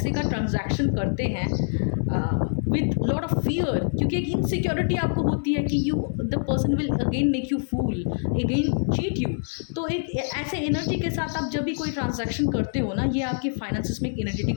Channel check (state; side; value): silent; right; 62 dB below the other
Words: का ट्रांजैक्शन करते हैं विथ लॉट ऑफ फियर, क्योंकि एक इनसिक्योरिटी आपको होती है कि the person will again make you fool, again cheat you. तो एक ऐसे एनर्जी के साथ आप जब भी कोई ट्रांजैक्शन करते हो ना, ये आपके फाइनेंसेस में एक